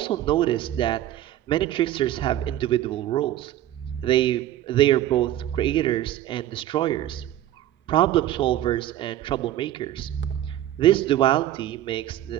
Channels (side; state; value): left; quieter; 13.1 dB